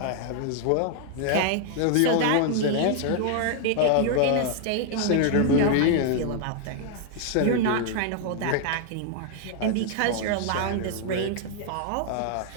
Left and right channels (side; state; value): both; different; correlation 0.00